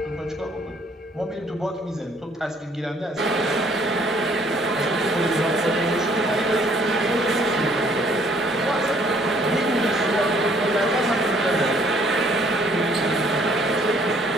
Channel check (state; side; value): normal; both; correlation 0.62